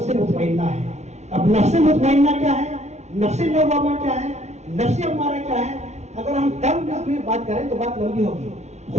مطمئنہ ہے. اب نفس مطمئنہ کیا ہے، نفس لوامہ کیا ہے، نفس امارہ کیا ہے؟ اگر ہم ٹرم میں بات کریں تو بات لمبی ہوگی.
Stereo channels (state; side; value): late; left; 0.32 ms